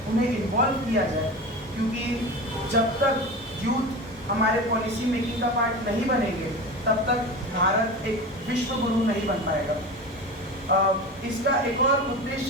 उन्हें इन्वॉल्व किया जाए, क्योंकि जब तक यूथ हमारे पॉलिसी मेकिंग का पार्ट नहीं बनेंगे तब तक भारत एक विश्व गुरु नहीं बन पाएगा। इसका एक और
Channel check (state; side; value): normal; both; correlation 0.29